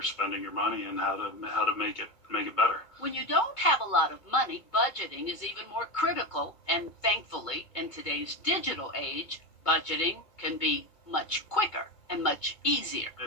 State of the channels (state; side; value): late; right; 2.2 ms